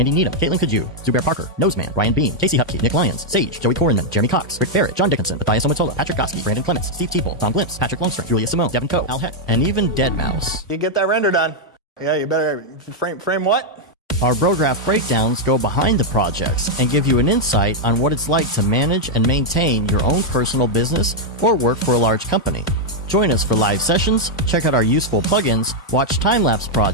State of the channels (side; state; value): both; normal; correlation -0.01